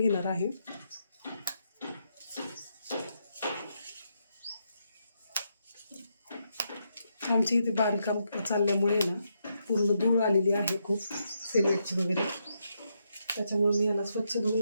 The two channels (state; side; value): inverted; both; correlation -0.81